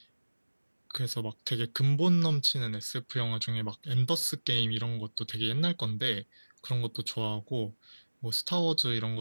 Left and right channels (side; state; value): both; inverted; correlation -1.00